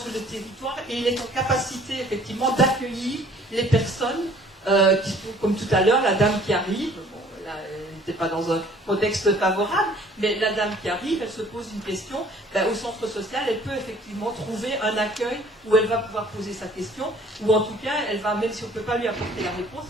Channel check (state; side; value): normal; both; correlation 0.55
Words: le territoire et il est en capacité effectivement d'accueillir les personnes qui sont, comme tout à l'heure, la dame qui arrive. Là, elle n'était pas dans un contexte favorable, mais la dame qui arrive, elle se pose une question, au centre social, elle peut effectivement trouver un accueil où elle va pouvoir poser sa question, ou en tout cas, elle va, même si on ne peut pas lui apporter la réponse,